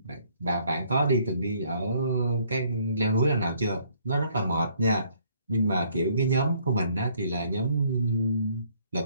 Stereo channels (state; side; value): inverted; both; correlation -0.65